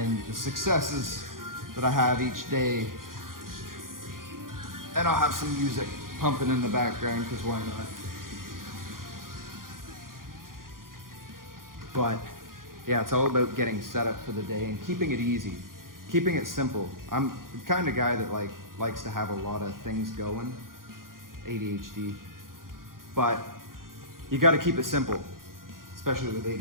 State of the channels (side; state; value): left; late; 0.91 ms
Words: the successes that I have each day. And I'll have some music pumping in the background, because why not? But yeah, it's all about getting set up for the day and keeping it easy, keeping it simple. I'm the kind of guy that likes to have a lot of things going, ADHD, but you got to keep it simple, especially with